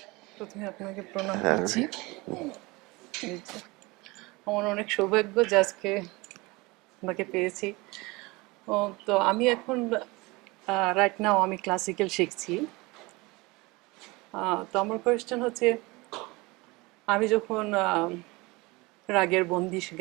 প্রথমে আপনাকে প্রণাম করছি আমার অনেক সৌভাগ্য যে আজকে আপনাকে পেয়েছি তো আমি এখন রাইট নাও আমি ক্লাসিক্যাল শিখছি তো আমার কোয়েশ্চেন হচ্ছে আমি যখন রাগের বন্দিশ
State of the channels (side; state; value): left; quieter; 23.7 dB